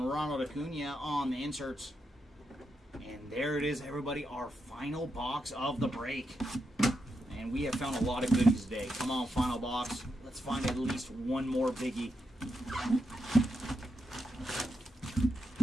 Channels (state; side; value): normal; both; correlation 0.84